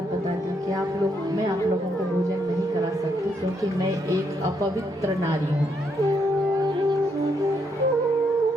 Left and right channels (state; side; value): normal; both; correlation 0.76